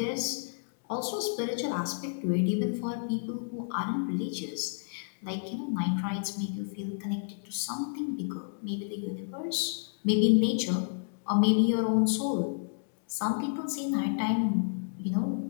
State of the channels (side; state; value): right; silent; digital silence